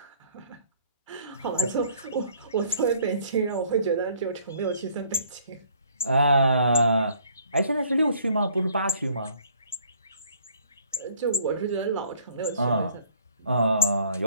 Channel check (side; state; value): both; inverted; correlation -0.58